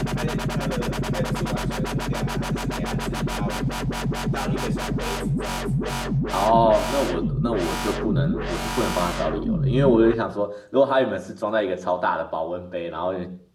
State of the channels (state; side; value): identical; both; correlation 1.00